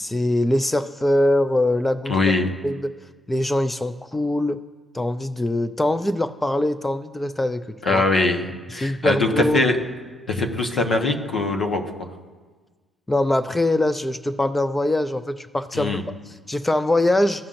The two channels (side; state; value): both; normal; correlation 0.83